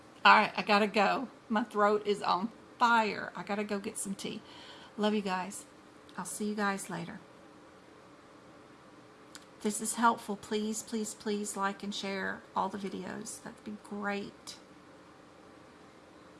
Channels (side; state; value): both; identical; correlation 1.00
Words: All right, I gotta go. My throat is on fire. I gotta go get some tea. Love you guys. I'll see you guys later. If this is helpful, please, please, please like and share all the videos. That'd be great.